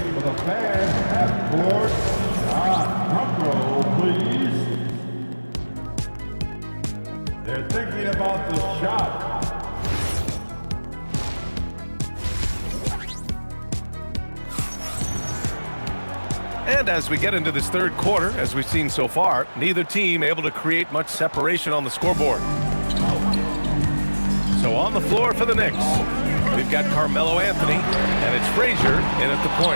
for the fans at court. Shot. Drum roll, please. They're thinking about the shot. And as we get into this third quarter, as we've seen so far, neither team able to create much separation on the scoreboard. So on the floor for the Knicks, we've got Carmelo Anthony, and it's Frazier in at the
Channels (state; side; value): inverted; both; correlation -1.00